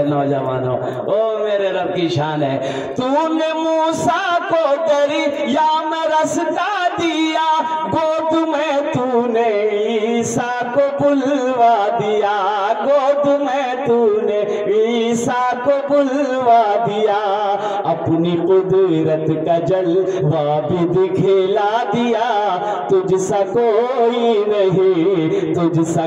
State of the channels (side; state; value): both; identical; correlation 1.00